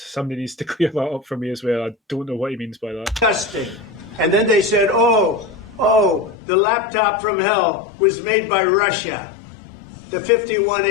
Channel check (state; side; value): drops out; right; at 6.4 s